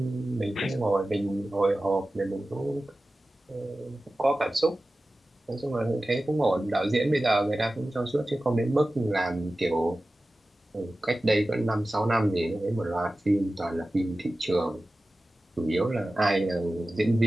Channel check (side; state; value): both; normal; correlation 0.95